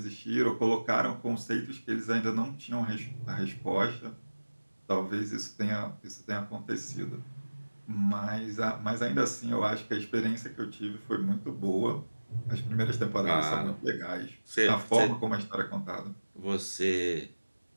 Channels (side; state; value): both; inverted; correlation -1.00